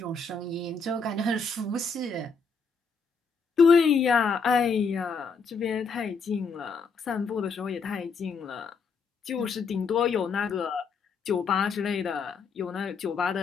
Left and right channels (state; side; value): quieter; right; 4.8 dB